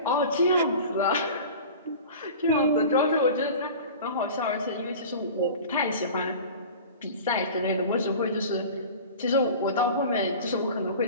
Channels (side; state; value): both; inverted; correlation -0.37